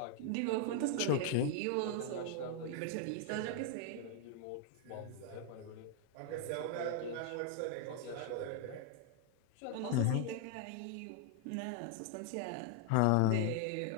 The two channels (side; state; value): both; different; correlation 0.00